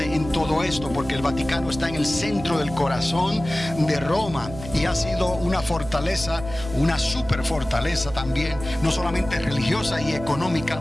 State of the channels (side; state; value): right; noise; hum, 12 dB below the sound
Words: en todo esto, porque el Vaticano está en el centro del corazón de Roma, y ha sido una fortaleza, una super fortaleza también, no solamente religiosa y económica,